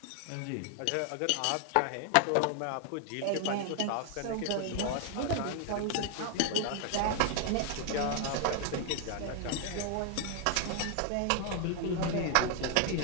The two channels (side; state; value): both; different; correlation 0.00